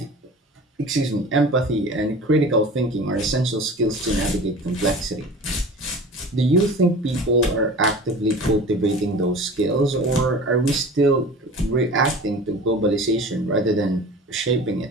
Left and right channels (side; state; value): both; normal; correlation 0.39